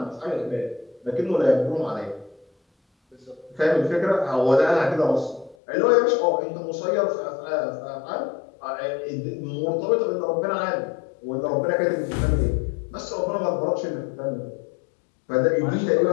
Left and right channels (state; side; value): drops out; right; at 5.6 s